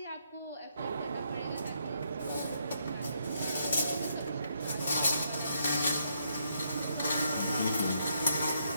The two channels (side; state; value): both; inverted; correlation -0.74